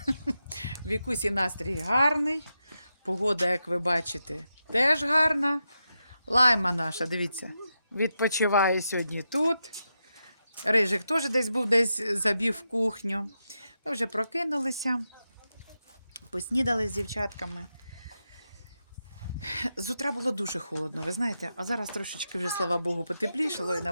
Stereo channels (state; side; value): inverted; both; correlation -0.87